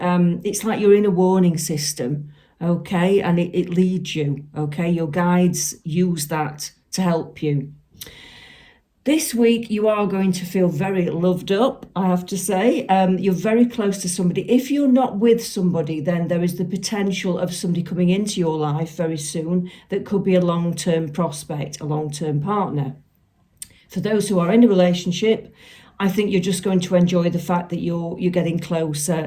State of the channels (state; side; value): identical; both; correlation 1.00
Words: it's like you're in a warning system, okay? And it leads you, okay? Your guides use that to help you. This week, you are going to feel very loved up, I have to say. You're very close to somebody. If you're not with somebody, then there is the potential of somebody coming into your life very soon that could be a long-term prospect, a long-term partner. For those who are in a relationship, I think you're just going to enjoy the fact that you're getting